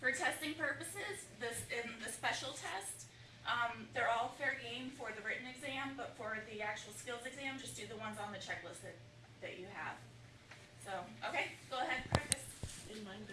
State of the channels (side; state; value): both; identical; correlation 1.00